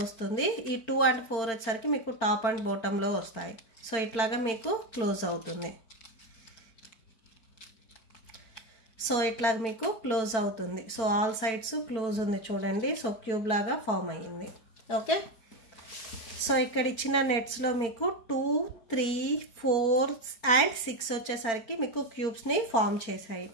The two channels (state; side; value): late; right; 4.4 ms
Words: వస్తుంది. ఈ 2 and 4 వచ్చేసరికి మీకు టాప్ అండ్ బాటంలో వస్తాయి. సో ఇట్లాగా మీకు క్లోజ్ అవుతుంది. సో ఇట్లాగా మీకు క్లోజ్ అవుతుంది. సో ఆల్ సైడ్స్ క్లోజ్ ఉంది చూడండి. సో క్యూబ్ లాగా ఫామ్ అయ్యింది. ఓకే, సో ఇక్కడ ఇచ్చిన నెట్స్లో మీకు 2 3 4 అండ్ 6 వచ్చేసరికి మీకు క్యూబ్స్ని ఫామ్ చేశాయి.